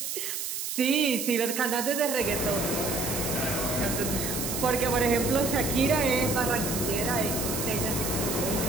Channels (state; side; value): noise; right; hiss, 4 dB below the sound